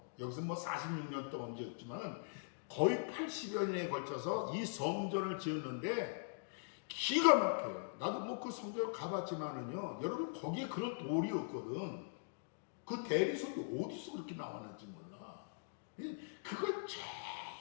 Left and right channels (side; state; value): right; silent; digital silence